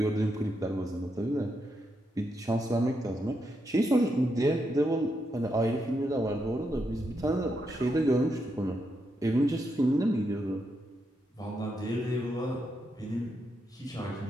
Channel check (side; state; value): both; normal; correlation 0.82